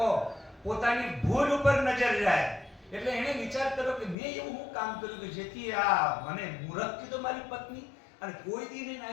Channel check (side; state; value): right; drops out; at 4.2 s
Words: પોતાની ભૂલ ઉપર નજર જાય. એટલે એને વિચાર કર્યો કે મેં એવું હું કામ કર્યું કે જેથી આ મને મૂરખ કીધો મારી પત્ની, અને કોઈ દી નહીં